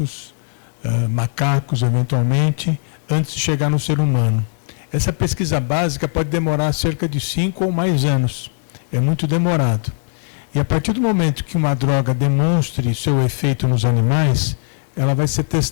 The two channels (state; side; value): silent; right; digital silence